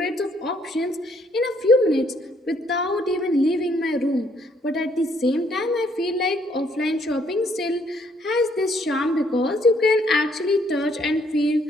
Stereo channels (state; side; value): normal; both; correlation 0.68